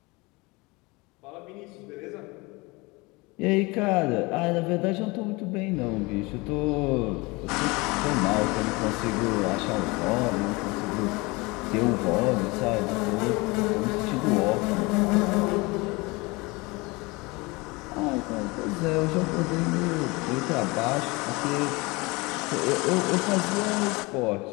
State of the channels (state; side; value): quieter; right; 24.9 dB